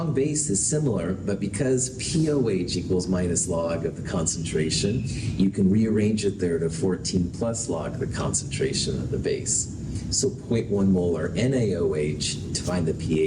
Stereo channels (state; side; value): identical; both; correlation 1.00